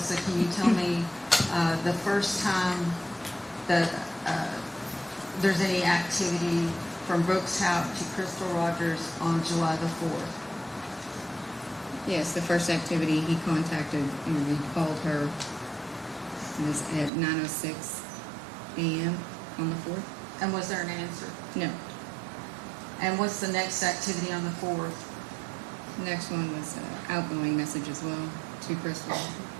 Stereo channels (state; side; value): drops out; left; at 17.1 s